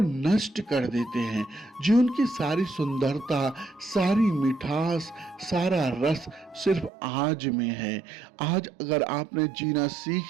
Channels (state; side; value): drops out; left; at 6.9 s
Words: नष्ट कर देते हैं। जीवन की सारी सुंदरता, सारी मिठास, सारा रस सिर्फ आज में है। आज अगर आपने जीना